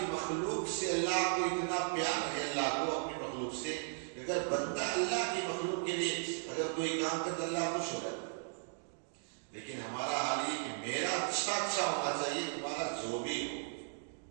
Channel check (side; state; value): left; silent; digital silence